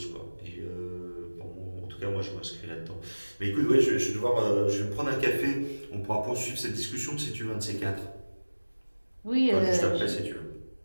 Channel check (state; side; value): inverted; both; correlation -1.00